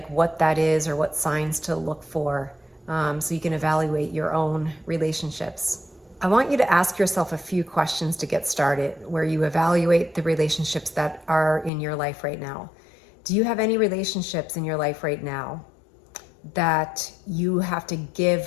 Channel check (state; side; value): drops out; right; at 11.7 s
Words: what that is, or what signs to look for, so you can evaluate your own relationships. I want you to ask yourself a few questions to get started, where you evaluate the relationships that are in your life right now. Do you have any relationships in your life right now that you have to